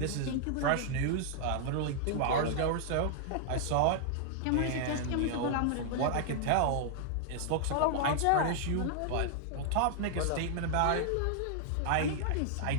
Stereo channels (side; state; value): both; different; correlation -0.01